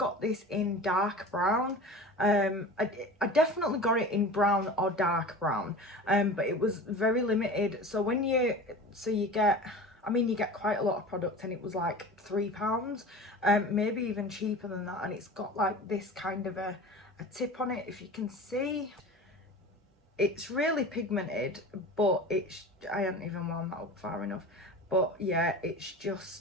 this in dark brown. I definitely got it in brown or dark brown, but it was very limited. So when you get, I mean, you get quite a lot of product, and it was like £3, maybe even cheaper than that. And it's got like this kind of a tip on it, if you can see. It's really pigmented, but I haven't even wound that up far enough. But yeah,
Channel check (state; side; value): normal; both; correlation 0.35